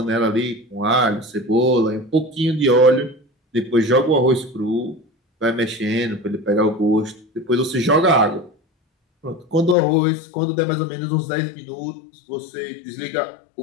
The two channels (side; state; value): right; drops out; at 9.8 s